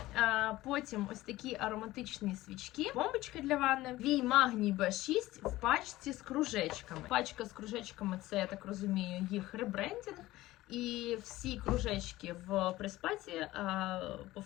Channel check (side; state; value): right; quieter; 17.1 dB